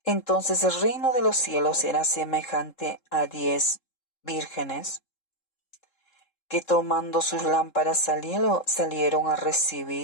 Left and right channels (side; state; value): right; late; 3.7 ms